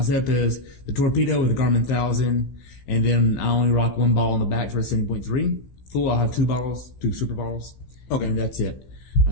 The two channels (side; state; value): right; late; 16 ms